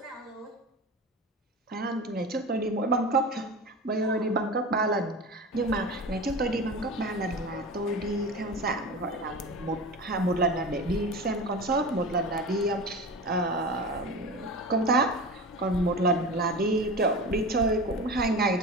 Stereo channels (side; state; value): both; normal; correlation 0.30